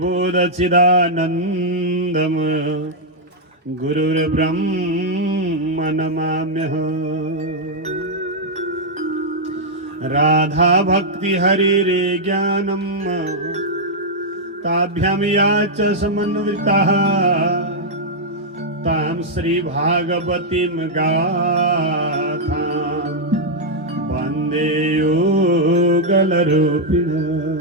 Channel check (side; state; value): both; normal; correlation -0.04